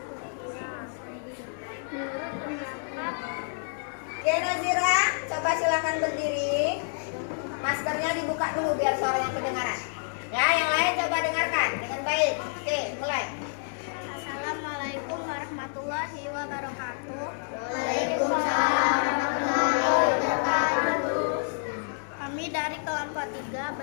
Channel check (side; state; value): right; silent; digital silence